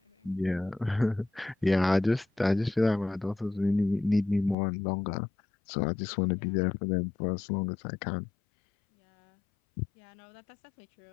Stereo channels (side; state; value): right; drops out; at 4.5 s